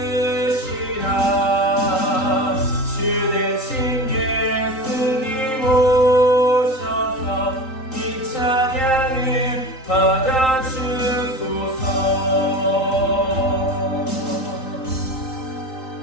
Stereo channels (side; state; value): right; late; 3.8 ms